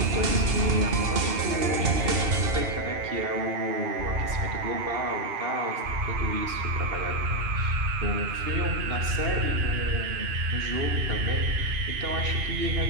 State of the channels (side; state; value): left; late; 2.7 ms